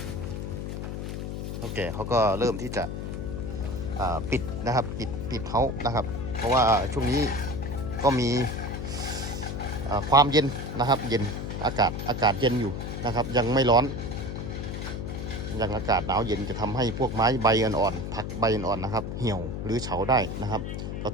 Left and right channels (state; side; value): noise; left; hum, 5 dB below the sound